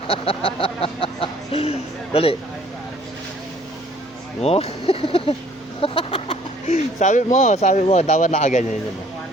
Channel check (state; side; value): normal; both; correlation 0.58